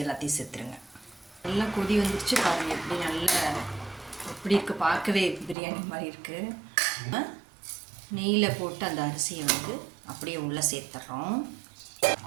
எல்லாத்தையும் சேர்த்துருங்க. நல்லா கொதி வந்துடுச்சு பாருங்கள். எப்படி நல்லா எப்படி இருக்குது, பார்க்கவே பிரியாணி மாதிரி இருக்குது. நெய்யில் போட்டு அந்த அரிசியை வந்து அப்படியே உள்ளே சேர்த்துட்றோம்.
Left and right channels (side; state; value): left; drops out; at 5.6 s